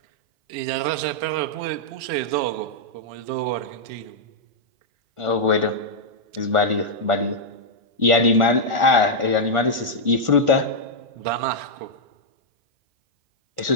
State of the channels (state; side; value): late; left; 1.4 ms